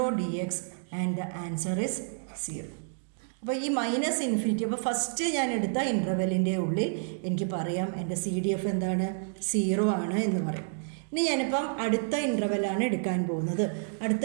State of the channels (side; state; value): left; silent; digital silence